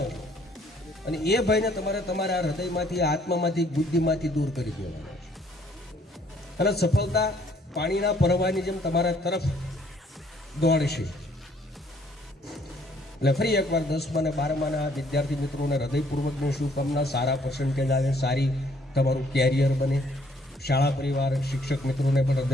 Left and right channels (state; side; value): normal; both; correlation 0.64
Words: છો અને એ ભયને તમારે તમારા હૃદયમાંથી, આત્મામાંથી, બુદ્ધિમાંથી દૂર કરી દેવાનો છે. અને સફળતા પાણીના પ્રવાહની જેમ તમારા તરફ દોડશે. એટલે ફરી એકવાર 10મા અને 12માના વિદ્યાર્થી મિત્રોને હૃદયપૂર્વકની શુભકામના. સારા પર્સન્ટેજ આવે, સારી તમારું કેરિયર બને. શાળા પરિવાર, શિક્ષક મિત્રોને પણ